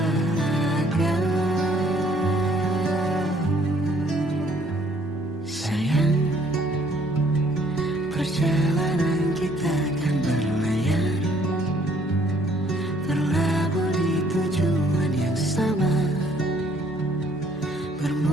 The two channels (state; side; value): normal; both; correlation 0.63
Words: Sayang, perjalanan kita akan berlayar, berlabuh di tujuan yang sama,